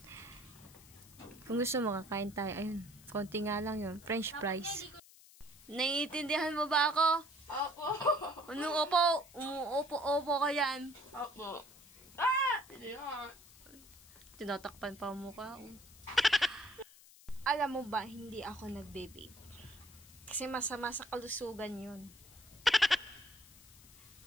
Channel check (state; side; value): noise; left; hiss, 22 dB below the sound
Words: Kung gusto mo, kakain tayo. Ayun, konti nga lang yun. French fries. Naiintindihan mo ba ako? Opo. Anong opo? Umuopo-opo ka yan. Opo. Hindi nga. Tinatakpan pa ang mukha. Alam mo ba, hindi ako nagbe-vape. Kasi masama sa kalusugan yun.